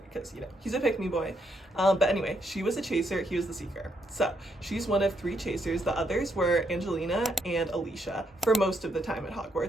because, you know, he's a pick-me boy. But anyway, she was a chaser, he was the seeker. So she's one of 3 chasers. The others were Angelina and Alicia for most of the time at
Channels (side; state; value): both; normal; correlation 0.76